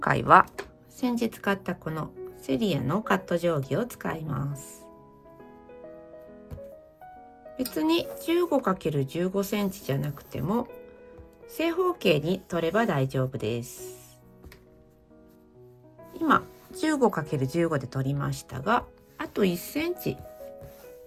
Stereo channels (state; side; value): identical; both; correlation 1.00